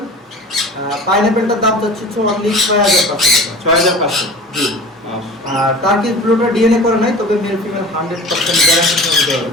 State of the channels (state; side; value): normal; both; correlation 0.38